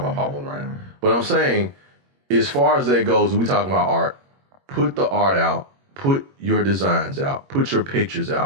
about Paul Boney right now. But I'm saying, as far as that goes, we talking about art. Put the art out. Put your designs out. Put your pictures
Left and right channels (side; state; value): left; late; 21 ms